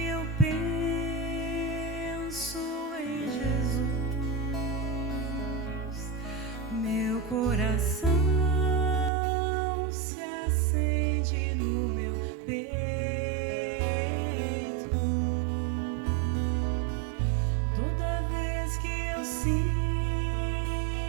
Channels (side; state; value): left; drops out; at 9.1 s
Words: eu penso em Jesus, meu coração se acende no meu peito. Toda vez que eu sinto